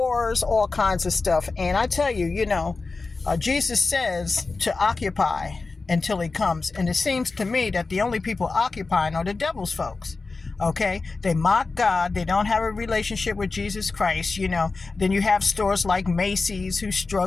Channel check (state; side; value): quieter; right; 3.9 dB